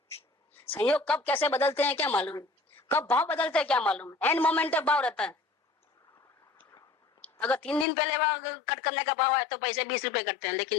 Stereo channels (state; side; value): drops out; right; at 7.9 s